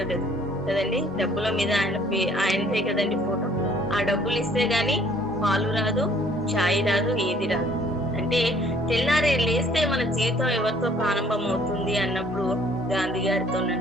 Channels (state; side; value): normal; both; correlation 0.59